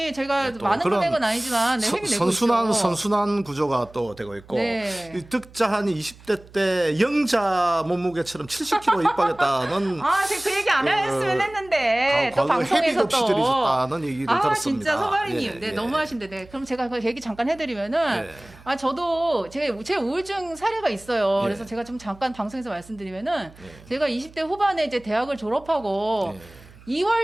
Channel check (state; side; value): noise; right; hum, 23 dB below the sound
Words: 제가 또 많은 그런 금액은 아니지만 회비 내고 있죠. 선순환 구조가 또 되고 있고 네. 이 득자한이 20대 때 영자 몸무게처럼 70kg 입하겠다는 제가 그 얘기 안 했으면 했는데 또 방송에서 회비 없이 또 들으셨다는 얘기를 들었습니다. 진짜 소바리님, 네, 예. 너무하신데, 네, 그럼 제가 그 얘기 잠깐 해드리면은, 저도 제 우울증 사례가 있어요. 예. 그래서 제가 좀 잠깐 방송에서 말씀드리면은, 제가 20대 후반에 이제 대학을 졸업하고